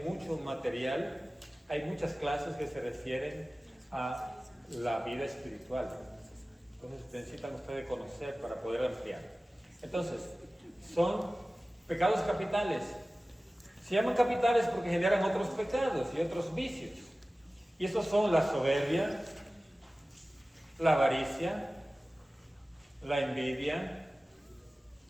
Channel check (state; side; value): normal; both; correlation 0.97